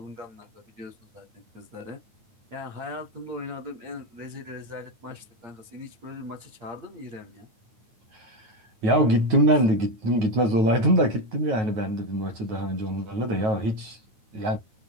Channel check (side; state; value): left; late; 9.3 ms